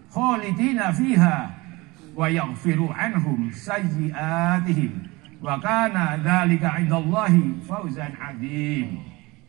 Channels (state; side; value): quieter; left; 22.9 dB